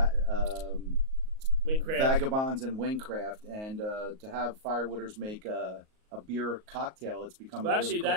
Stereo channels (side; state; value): left; late; 38 ms